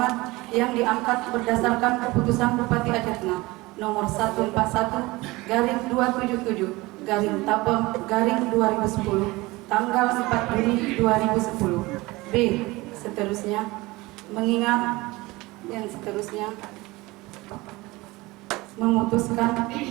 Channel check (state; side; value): quieter; left; 21.5 dB